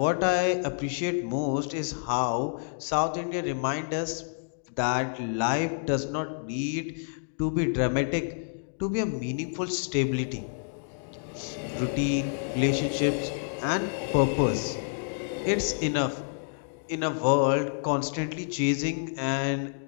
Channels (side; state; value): right; silent; digital silence